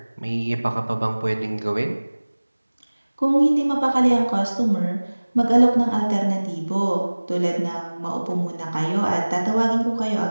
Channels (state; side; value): inverted; both; correlation -1.00